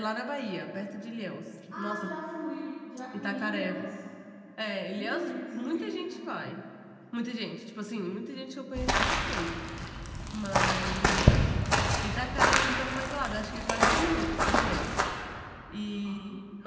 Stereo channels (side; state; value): both; identical; correlation 1.00